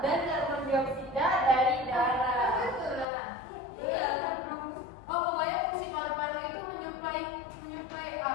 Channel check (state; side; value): drops out; right; at 3.1 s